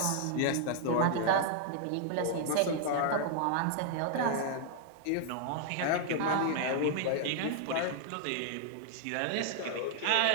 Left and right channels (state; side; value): different; both; correlation 0.00